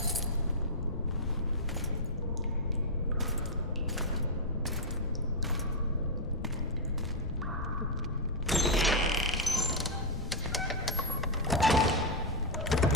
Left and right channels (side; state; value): left; noise; rumble, 6 dB below the sound